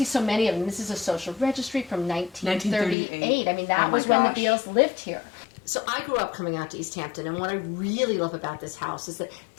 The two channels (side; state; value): right; drops out; at 3.0 s